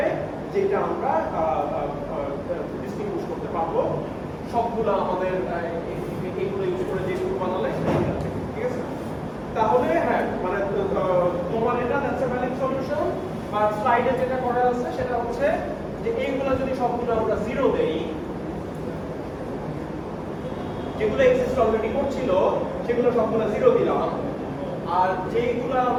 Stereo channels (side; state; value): both; identical; correlation 1.00